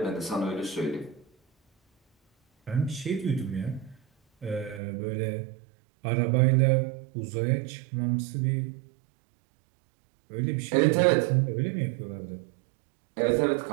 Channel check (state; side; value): drops out; left; at 4.8 s